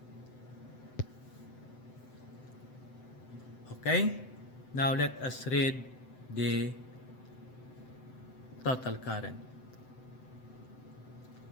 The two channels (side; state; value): right; late; 7.8 ms